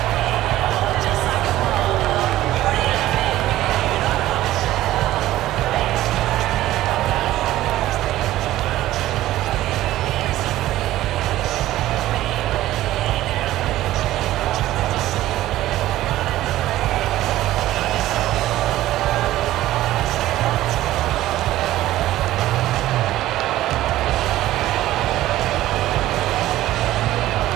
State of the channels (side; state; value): left; quieter; 15.0 dB